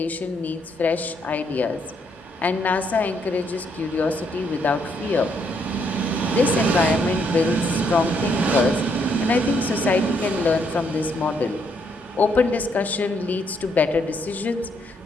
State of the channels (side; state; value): both; normal; correlation 0.73